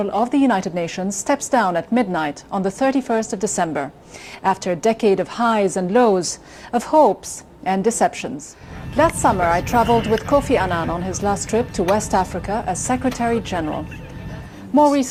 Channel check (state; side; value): identical; both; correlation 1.00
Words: of the United Nations, steps down at midnight on the 31st of December, after a decade of highs and lows, of hopes and deceptions. Last summer, I traveled with Kofi Annan on his last trip to West Africa as Secretary General. More